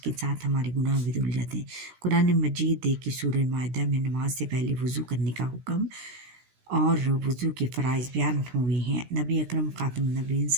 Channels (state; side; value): late; left; 16 ms